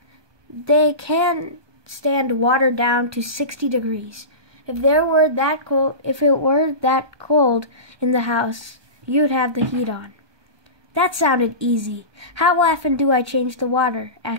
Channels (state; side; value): late; left; 1.2 ms